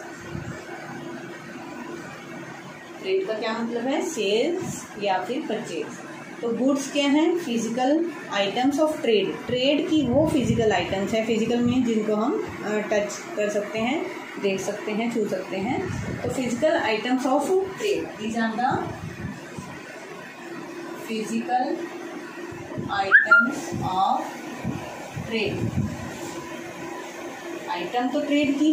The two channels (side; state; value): both; identical; correlation 1.00